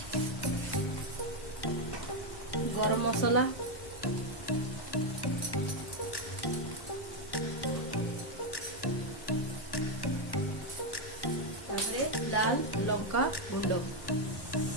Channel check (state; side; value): late; right; 1.1 ms